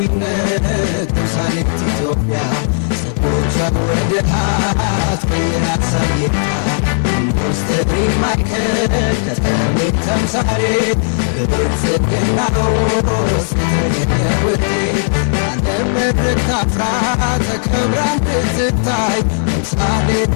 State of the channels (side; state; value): right; silent; digital silence